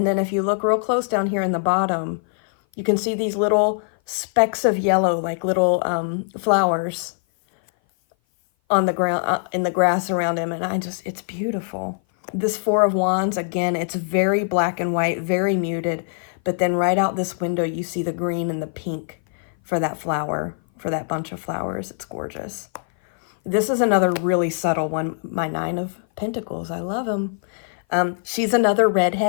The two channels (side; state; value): right; silent; 57 dB below the other